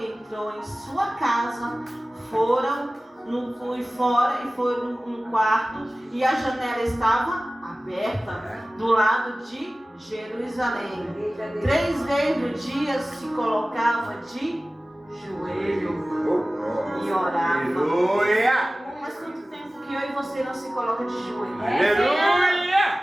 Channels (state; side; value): normal; both; correlation 0.97